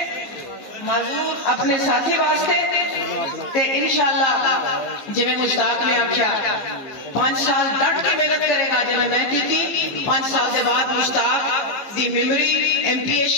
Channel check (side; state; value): right; late; 14 ms